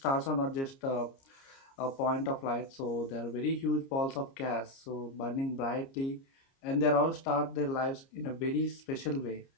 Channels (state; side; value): late; right; 30 ms